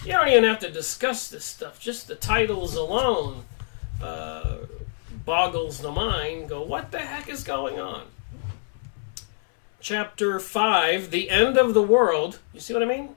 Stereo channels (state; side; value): silent; right; 62 dB below the other